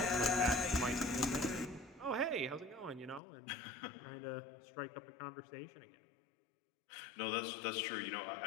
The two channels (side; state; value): right; drops out; at 3.2 s